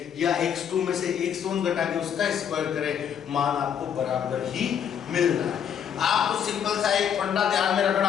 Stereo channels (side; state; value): right; quieter; 8.4 dB